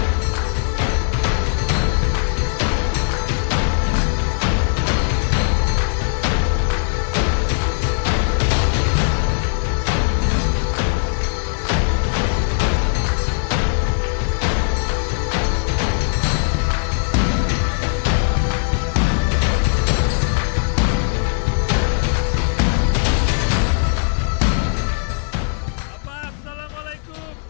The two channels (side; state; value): right; silent; digital silence